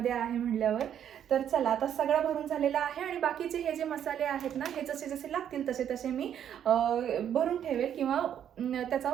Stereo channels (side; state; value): left; quieter; 9.5 dB